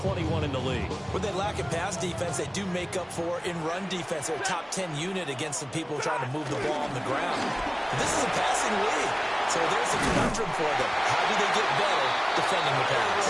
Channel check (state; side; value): identical; both; correlation 1.00